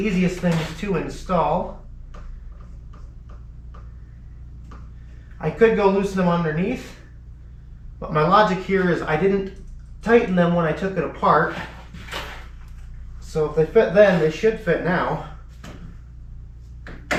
things to install. I could go loosen them underneath, but my logic here is I didn't tighten them when I took it apart. So if they fit then, they should fit now.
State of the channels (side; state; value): both; identical; correlation 1.00